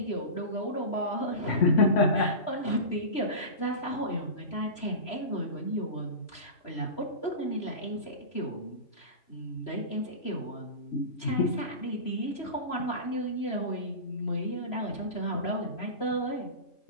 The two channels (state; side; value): late; right; 3.0 ms